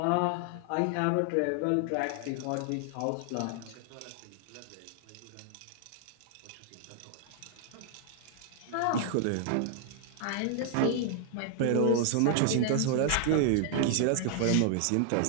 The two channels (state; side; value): different; both; correlation 0.00